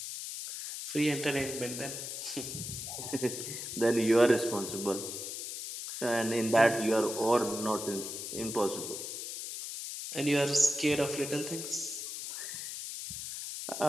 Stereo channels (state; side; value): noise; left; hiss, 6 dB below the sound